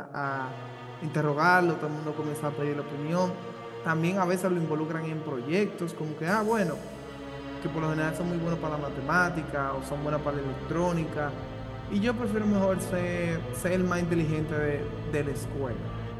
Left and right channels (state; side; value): identical; both; correlation 1.00